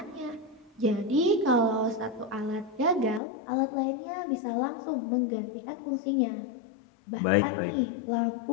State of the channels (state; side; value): drops out; right; at 3.2 s